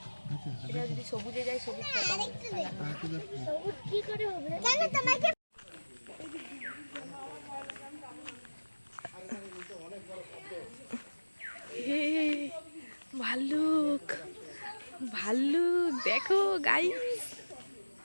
এটা যদি সবুজে যায় সবুজটা সবুজ কি করে হবে? কেন তোমাকে হে ভাল্লুক, ভাল্লুক দেখো গাইস,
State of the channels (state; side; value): inverted; both; correlation -1.00